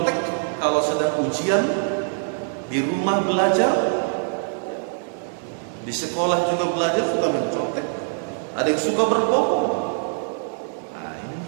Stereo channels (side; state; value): left; silent; 63 dB below the other